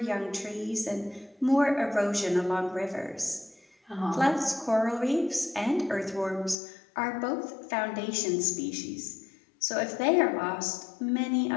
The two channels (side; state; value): right; drops out; at 6.6 s